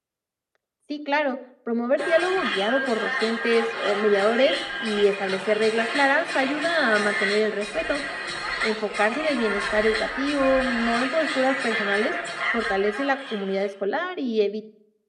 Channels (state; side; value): identical; both; correlation 1.00